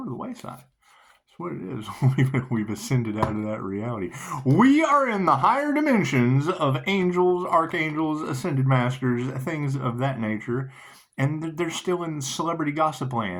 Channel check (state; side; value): identical; both; correlation 1.00